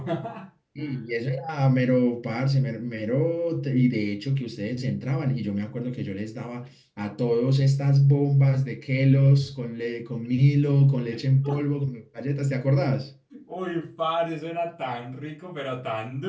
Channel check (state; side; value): identical; both; correlation 1.00